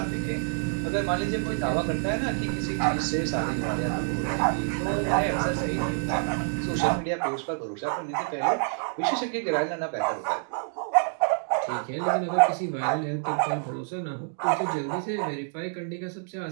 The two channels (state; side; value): silent; left; 58 dB below the other